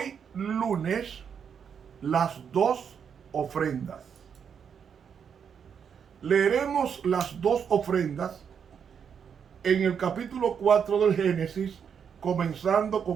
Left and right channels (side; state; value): left; quieter; 7.3 dB